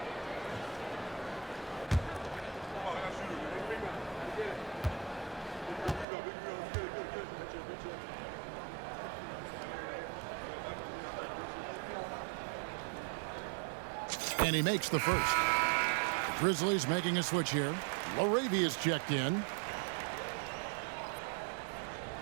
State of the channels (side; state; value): left; drops out; at 6.1 s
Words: And he makes the first. The Grizzlies making a switch here. Laravia's checked in.